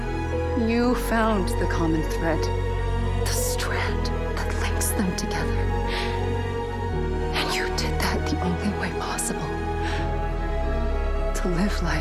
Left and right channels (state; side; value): identical; both; correlation 1.00